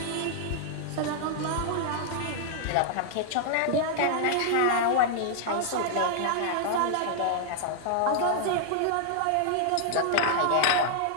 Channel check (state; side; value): different; both; correlation -0.01